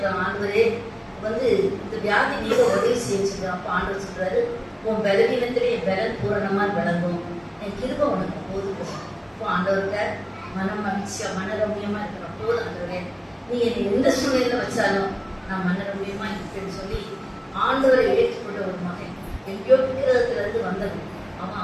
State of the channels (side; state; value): both; identical; correlation 1.00